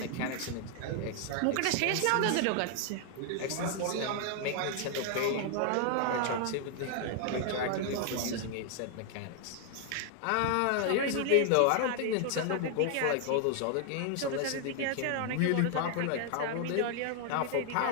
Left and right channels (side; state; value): both; different; correlation 0.00